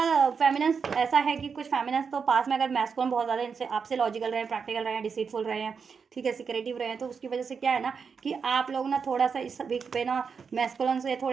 फेमिनिन्स ऐसा है कि कुछ फेमिनिन्स तो पास में अगर मैस्कुलिन बहुत ज़्यादा इनसे आपसे लॉजिकल रहे हैं, प्रैक्टिकल रहे हैं, डिसीटफुल रहे हैं, ठीक है, सिक्रेटिव रहे हैं, तो उसकी वजह से क्या है ना कि आप लोग ना थोड़ा सा इस वीक पे ना मैस्कुलिन से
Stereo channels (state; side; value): quieter; left; 5.9 dB